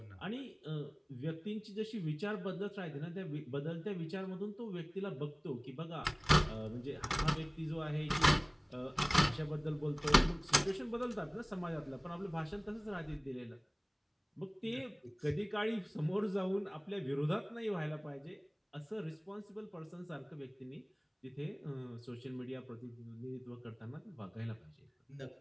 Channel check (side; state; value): both; identical; correlation 1.00